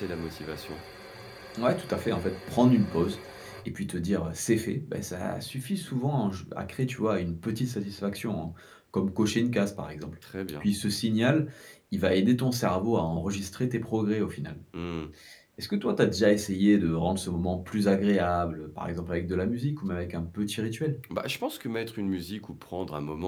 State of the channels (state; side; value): identical; both; correlation 1.00